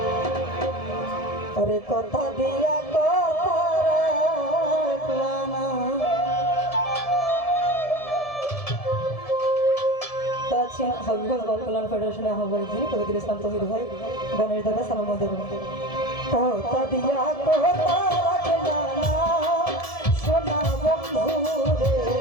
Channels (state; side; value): late; right; 1.7 ms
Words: ওরে কথা দিয়া কথা রাখলাম না। আছেন হবিগঞ্জ বাল কল্যাণ ফেডারেশনের আহ্বায়ক যিনি কবির ইসলাম তহির ভাই গণেশ দাদা সালাম দেব। কথা দিয়া কথা রাখলাম না সোনা বন্ধুরে